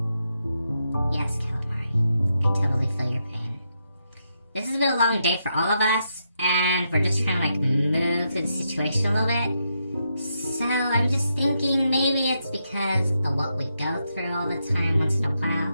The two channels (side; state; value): both; inverted; correlation -0.82